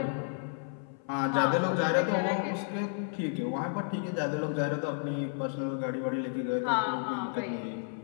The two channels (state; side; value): silent; right; 57 dB below the other